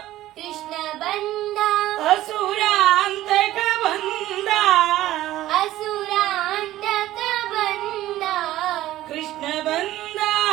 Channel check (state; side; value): quieter; left; 14.8 dB